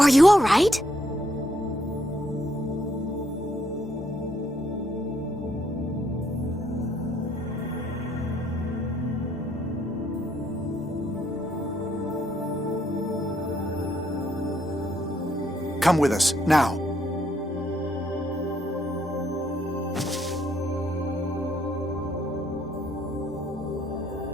you all right? Come with us, now.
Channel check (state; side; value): normal; both; correlation 0.71